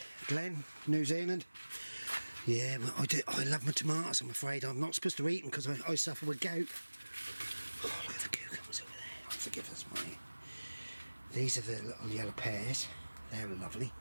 Glen, New Zealand. Yeah, well, I love my tomatoes. I'm afraid I'm not supposed to eat them because I suffer with gout. Oh, look at the cucumbers over there. Oh, forgive us, mate. These are the little yellow pears. They're lovely.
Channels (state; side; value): inverted; both; correlation -1.00